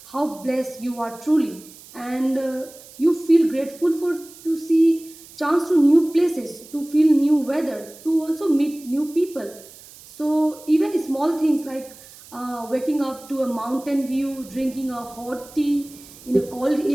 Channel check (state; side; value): noise; right; hiss, 20 dB below the sound